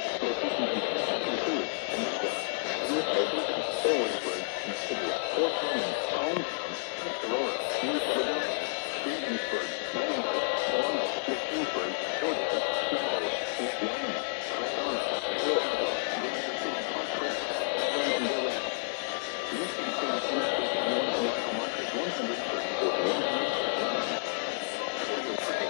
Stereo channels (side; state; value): right; silent; digital silence